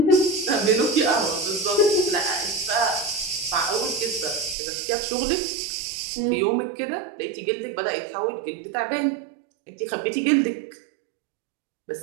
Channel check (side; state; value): left; drops out; at 4.5 s